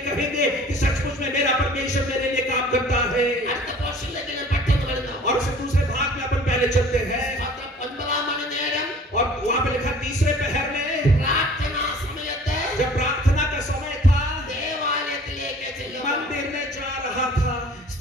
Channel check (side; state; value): both; normal; correlation 0.49